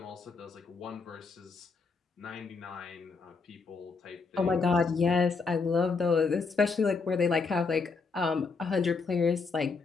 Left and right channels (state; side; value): quieter; right; 4.6 dB